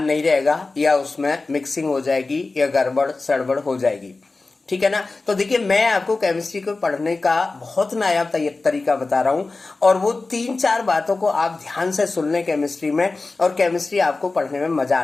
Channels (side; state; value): right; quieter; 3.6 dB